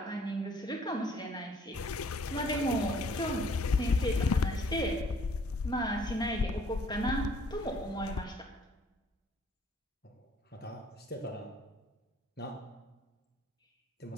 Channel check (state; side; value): normal; both; correlation 0.60